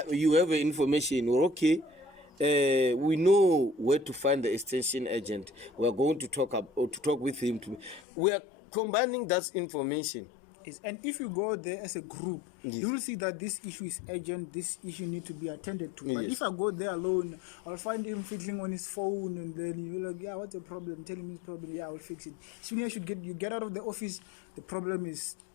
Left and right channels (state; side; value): drops out; right; at 8.0 s